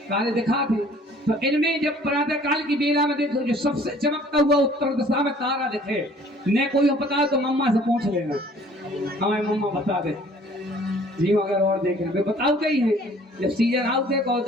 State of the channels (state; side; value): normal; both; correlation 0.54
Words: दिखा थे, तो इनमें जब प्रातः काल की बेला में देखो जो सबसे चमकता हुआ उत्तर दिशा में तारा दिखे, न कोई पता तो मम्मा से पूछ लेना, हमें मम्मा बता दे जी। अगर और देख रहे बताओ कहीं है, जब सीजन आउट है और